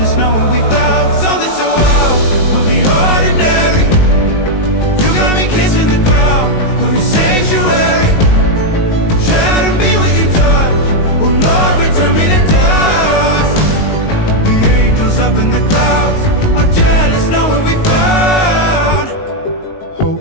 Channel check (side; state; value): right; late; 19 ms